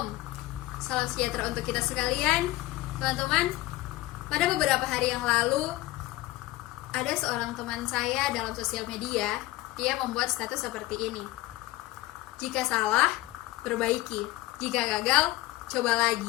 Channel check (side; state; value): right; quieter; 18.0 dB